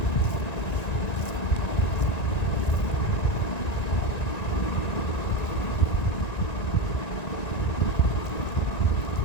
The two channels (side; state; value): right; late; 1.9 ms